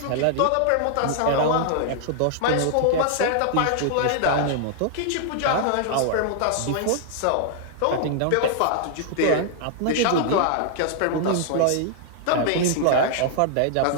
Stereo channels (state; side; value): different; both; correlation -0.01